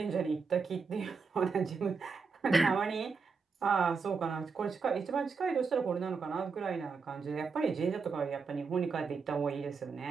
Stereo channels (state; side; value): quieter; left; 5.0 dB